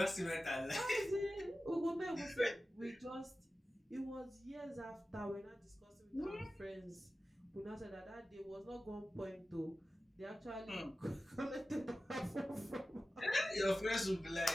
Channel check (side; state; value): both; normal; correlation 0.94